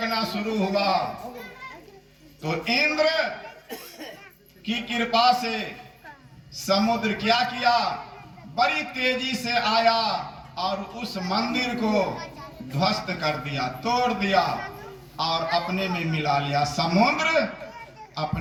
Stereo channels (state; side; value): identical; both; correlation 1.00